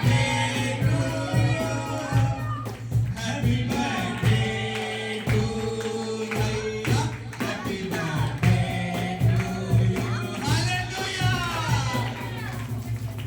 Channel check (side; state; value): both; identical; correlation 1.00